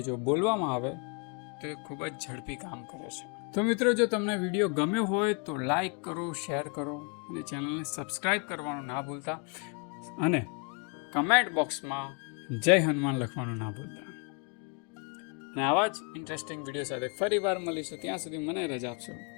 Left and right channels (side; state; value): right; quieter; 35.6 dB